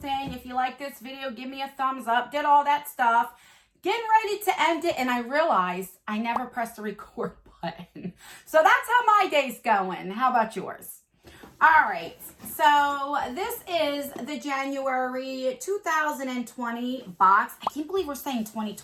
If you like this video, give me a thumbs up, did all that stuff. Getting ready to end it, and I realized I never pressed the record button. So that's how my day's going. How about yours? All right, so this is the January 2020 box. I can't believe we're saying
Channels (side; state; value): both; identical; correlation 1.00